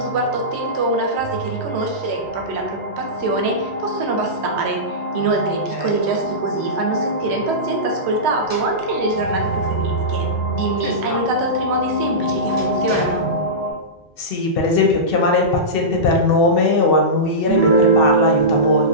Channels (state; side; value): normal; both; correlation -0.17